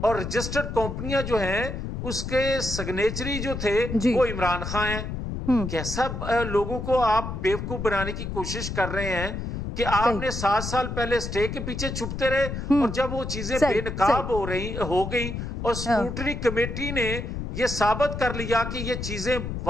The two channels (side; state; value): left; noise; rumble, 5 dB below the sound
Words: اور رجسٹرڈ کمپنیاں جو ہیں اس کے سگنیچری جو تھے وہ عمران خان ہیں. کیسا لوگوں کو آپ بیوقوف بنانے کی کوشش کر رہے ہیں کہ آپ نے 7 سال پہلے اسٹے کے پیچھے چھپتے رہے، اور جب وہ چیزیں بے نقاب ہو گئی اور اسکروٹنی کمیٹی نے یہ ثابت کر لیا کہ یہ چیزیں